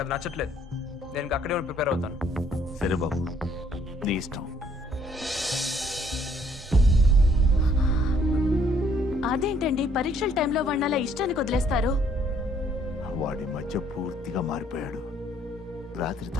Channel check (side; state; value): both; normal; correlation 0.64